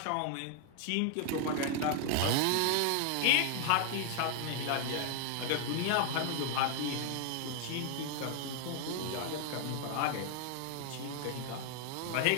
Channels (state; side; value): different; both; correlation 0.00